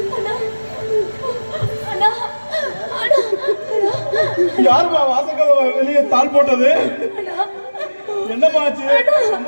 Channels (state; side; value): inverted; both; correlation -1.00